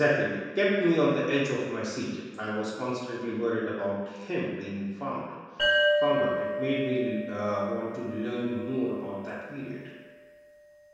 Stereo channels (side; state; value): both; identical; correlation 1.00